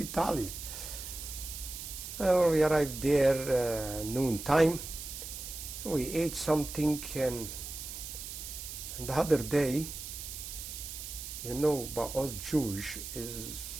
We arrived there noon time. We ate something, and the other day, you know, but us Jewish is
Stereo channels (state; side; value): noise; right; hiss, 8 dB below the sound